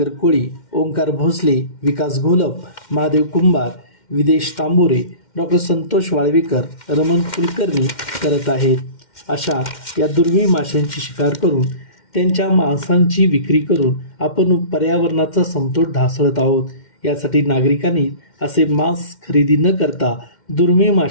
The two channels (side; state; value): right; late; 2.1 ms